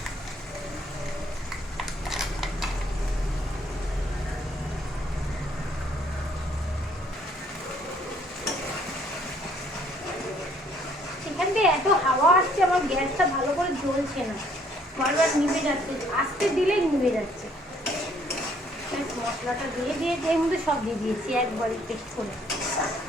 এখান থেকে এত হাওয়া আসছে, আমার গ্যাসটা ভালো করে জ্বলছে না, বারবার নিভে যাচ্ছে, আস্তে দিলেই নিভে যাচ্ছে। মশলাটা দিয়ে দিয়েছি, এর মধ্যে সব দিয়ে দিয়েছি একবারে পেস্ট করে।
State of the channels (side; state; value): both; normal; correlation 0.64